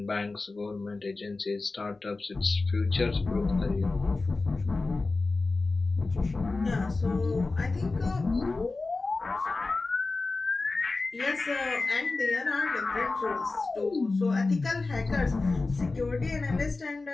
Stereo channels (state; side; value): quieter; right; 3.6 dB